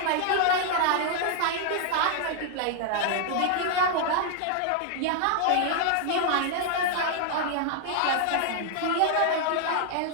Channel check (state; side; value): different; both; correlation 0.00